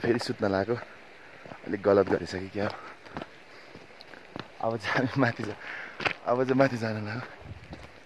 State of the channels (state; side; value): identical; both; correlation 1.00